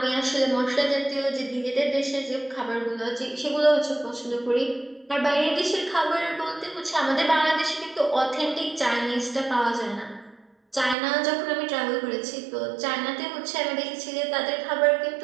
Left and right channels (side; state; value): left; drops out; at 11.0 s